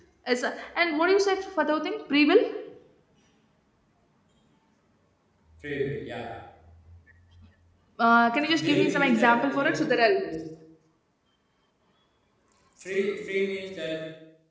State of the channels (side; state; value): both; identical; correlation 1.00